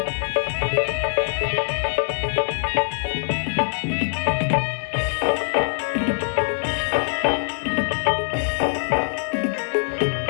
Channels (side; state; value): right; silent; digital silence